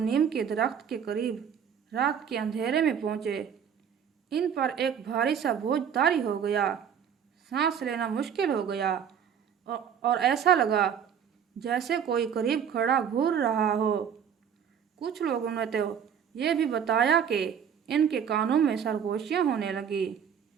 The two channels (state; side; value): quieter; left; 8.0 dB